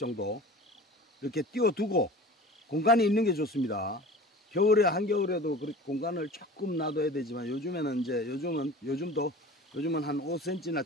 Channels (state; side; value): normal; both; correlation 0.39